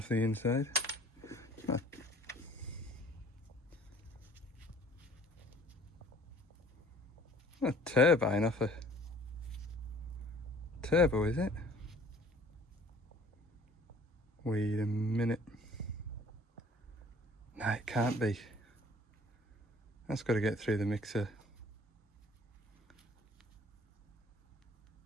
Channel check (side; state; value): both; normal; correlation 0.53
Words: the inside. A turbine off a turbo, is it? Wait a minute. No, it can't be. That's got to get through the mixer.